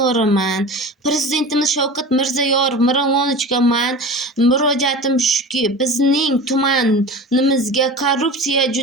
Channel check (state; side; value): normal; both; correlation 0.34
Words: Prezidentimiz Shavkat Mirziyoyev Miromonovichga men murojaatim shuki, bizning tumanimizga korrupsiya